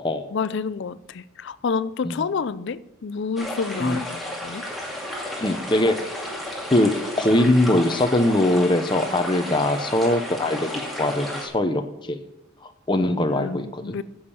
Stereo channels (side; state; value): both; normal; correlation 0.60